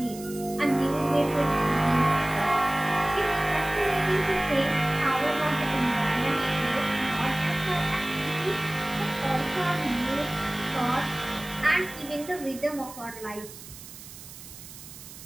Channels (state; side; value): noise; right; hiss, 15 dB below the sound